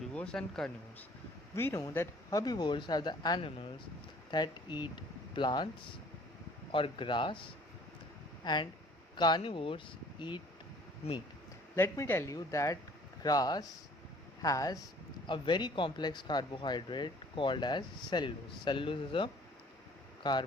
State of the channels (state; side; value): normal; both; correlation 0.54